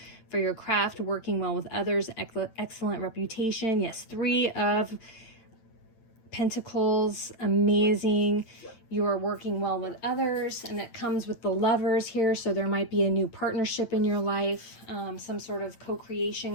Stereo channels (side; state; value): right; late; 8.9 ms